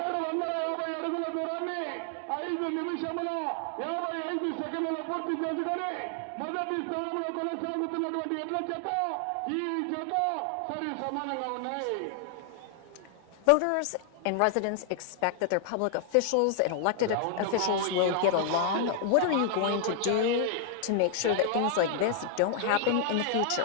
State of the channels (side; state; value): both; different; correlation 0.00